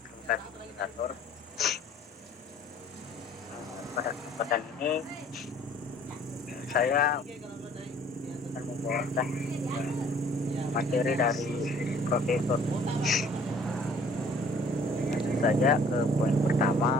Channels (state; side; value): normal; both; correlation 0.55